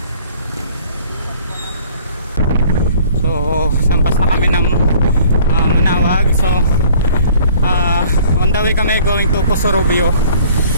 So sampas na kami ng Manawag. So on the way kami going to Pusorobio.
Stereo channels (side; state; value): both; inverted; correlation -0.53